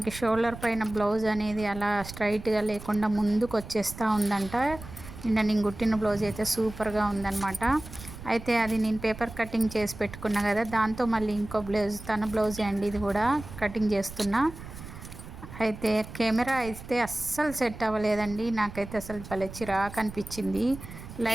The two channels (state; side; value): noise; right; rumble, 14 dB below the sound